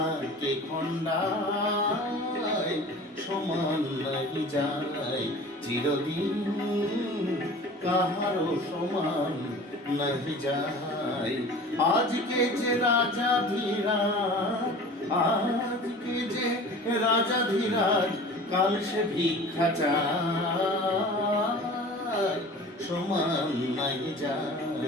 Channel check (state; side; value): normal; both; correlation 0.41